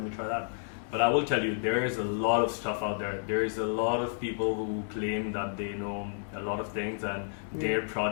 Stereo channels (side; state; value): right; silent; digital silence